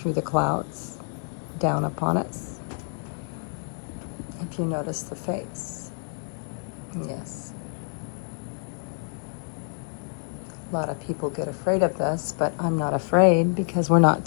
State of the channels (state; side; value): silent; right; 60 dB below the other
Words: the clouds, down upon us. If you notice the face, yes. A lot of people get afraid of this, but I'm not afraid because we're not